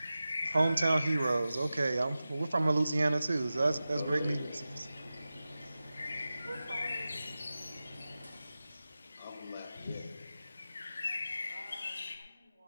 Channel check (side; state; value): both; inverted; correlation -0.95